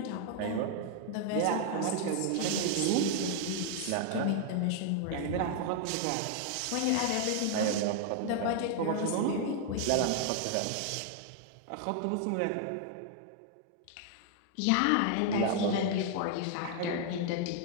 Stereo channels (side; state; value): both; different; correlation 0.00